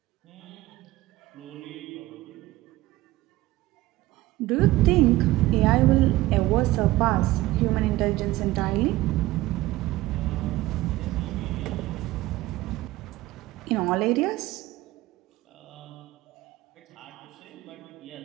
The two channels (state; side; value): quieter; left; 17.8 dB